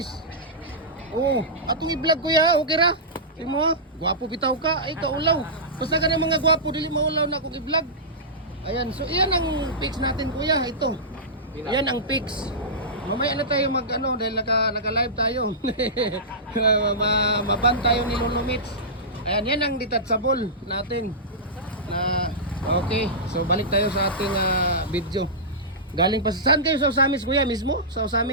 Oh, atong i-vlog kuya, okay ra? Di mo, gwapo bitaw ka, ay kaulaw. Basta ka ng mga gwapo, dili maulaw na akong i-vlog. Ayan, so iyan ang pics natin kuya, ito. Iyan ang pics. Mamaya na tayo mag ano, dahil naka-live tayo. Maban tayo ni Lolo Mitch. Ayan, yan ang detachable natin. Na okay, so balik tayo sa ating video. Galing pa saan kayo sa Usamis kuya mismo? Sa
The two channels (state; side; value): normal; both; correlation -0.16